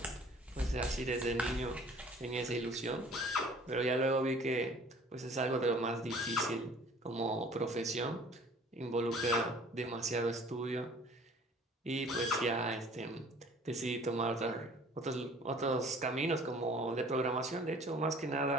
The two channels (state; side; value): normal; both; correlation 0.51